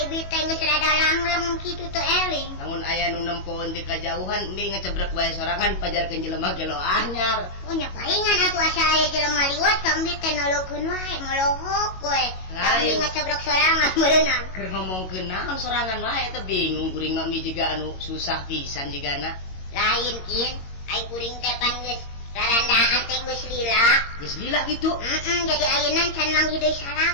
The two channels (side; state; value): right; late; 22 ms